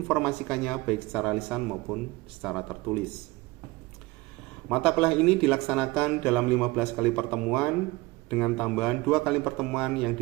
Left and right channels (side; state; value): left; quieter; 21.6 dB